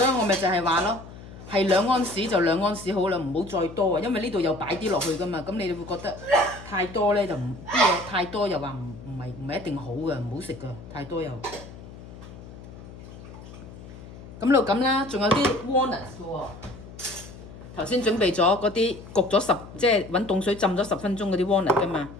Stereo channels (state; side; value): noise; left; hum, 16 dB below the sound